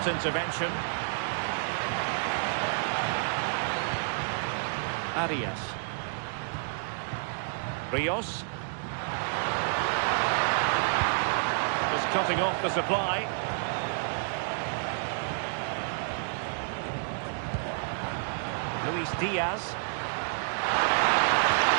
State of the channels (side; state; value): left; silent; digital silence